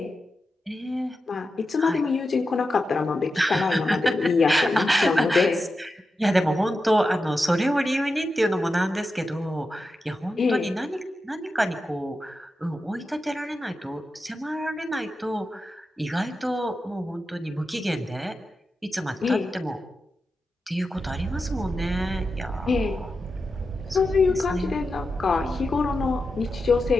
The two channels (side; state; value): both; normal; correlation 0.90